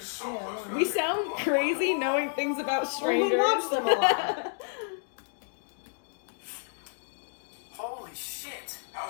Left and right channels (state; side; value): silent; right; digital silence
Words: So Yeah, close one. to We sound crazy knowing things about Well, strangers. we watch them a lot. Holy shit!